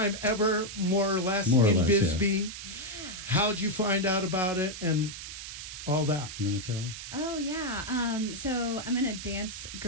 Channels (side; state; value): right; noise; hiss, 10 dB below the sound